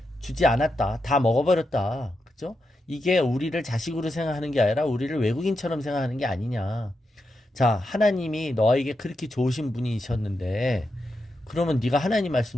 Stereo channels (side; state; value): both; normal; correlation 0.86